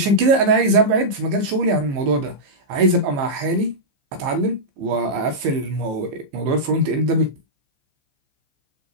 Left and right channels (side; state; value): left; late; 15 ms